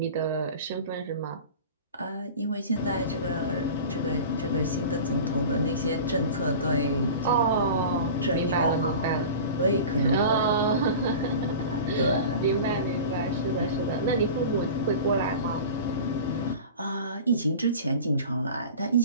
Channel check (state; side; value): inverted; both; correlation -0.36